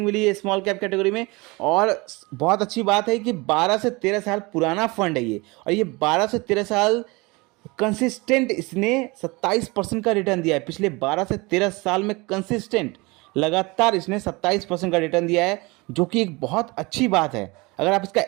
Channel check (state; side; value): quieter; left; 24.9 dB